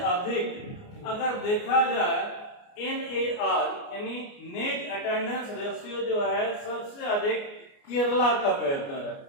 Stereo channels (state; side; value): late; right; 29 ms